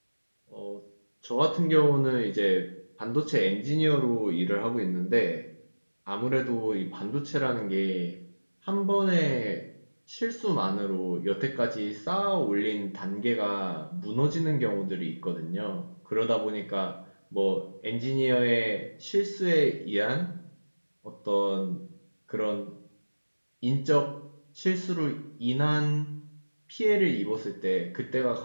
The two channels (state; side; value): inverted; both; correlation -1.00